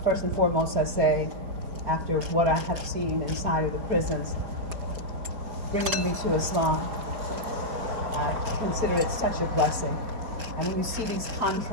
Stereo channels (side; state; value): left; late; 4.3 ms